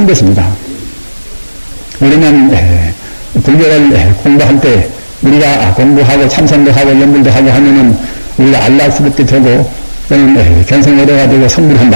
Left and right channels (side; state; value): both; inverted; correlation -1.00